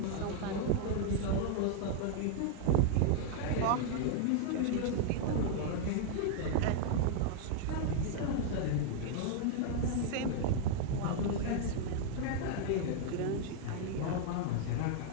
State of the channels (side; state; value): both; different; correlation -0.01